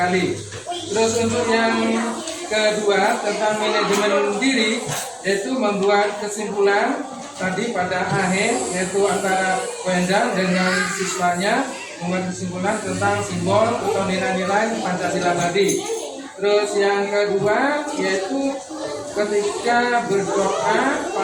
Terus untuk yang kedua tentang manajemen diri, yaitu membuat kesimpulan tadi pada akhir, yaitu antara Wendang dengan siswanya membuat kesimpulan tentang simbol atau nilai-nilai Pancasila tadi. Terus yang kedua yaitu ketika berdoa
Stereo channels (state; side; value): identical; both; correlation 1.00